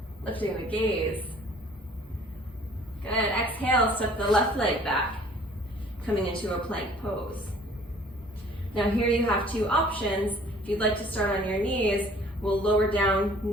lifting the gaze. Good, exhale, step the left leg back, coming into a plank pose. Now here you have 2 options. If you'd like to start on your knees, we'll lower down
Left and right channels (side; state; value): both; normal; correlation 0.54